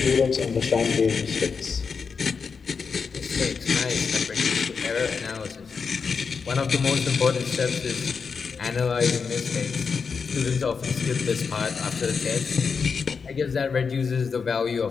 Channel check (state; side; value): quieter; right; 5.5 dB